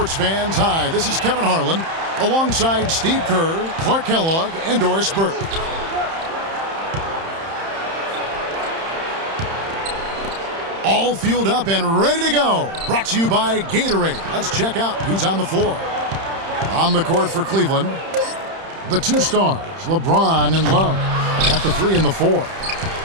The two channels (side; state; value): left; late; 31 ms